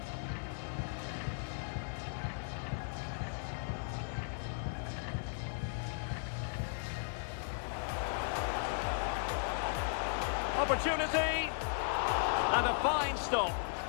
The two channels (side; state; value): right; silent; 53 dB below the other